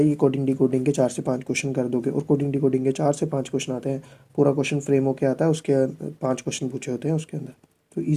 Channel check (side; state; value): both; identical; correlation 1.00